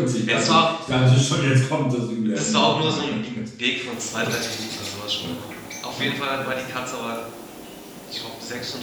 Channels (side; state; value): both; identical; correlation 1.00